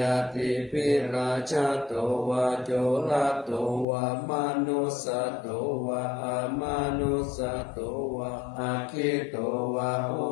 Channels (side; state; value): right; drops out; at 3.9 s